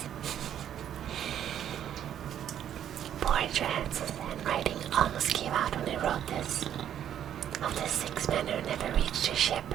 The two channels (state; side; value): quieter; left; 10.1 dB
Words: Poor Johansson's handwriting almost gave out when he wrote this. Of the 6 men who never reached a ship,